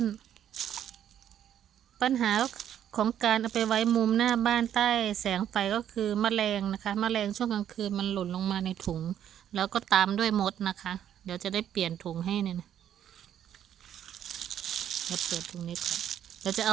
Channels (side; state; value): left; quieter; 10.2 dB